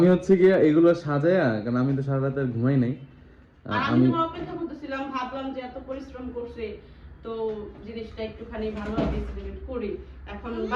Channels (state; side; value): identical; both; correlation 1.00